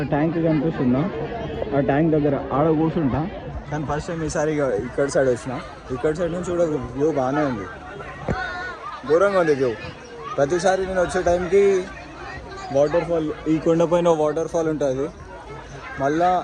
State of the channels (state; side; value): identical; both; correlation 1.00